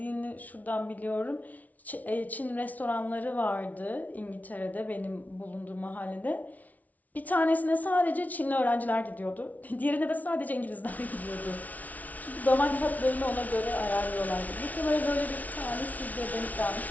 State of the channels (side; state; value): right; late; 0.074 ms